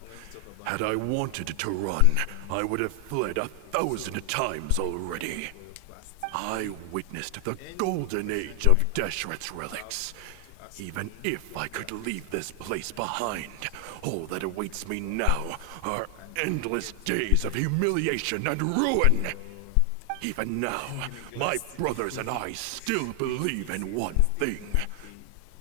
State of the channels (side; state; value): both; different; correlation 0.00